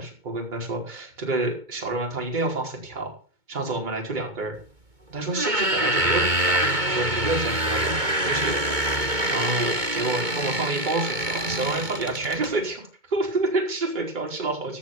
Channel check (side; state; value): left; late; 2.2 ms